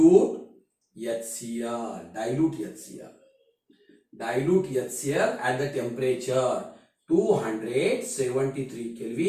HCl. Dilute HCl at the temperature 273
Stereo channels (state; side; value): identical; both; correlation 1.00